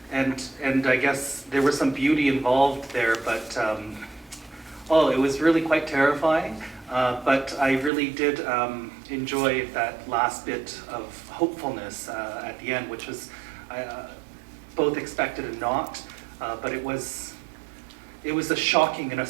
I guess there was some beauty involved there, but it was really quite terrifying. But I really did enjoy that last bit of hopefulness at the end, which was both expected and not, but it was a shocking and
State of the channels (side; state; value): left; drops out; at 7.9 s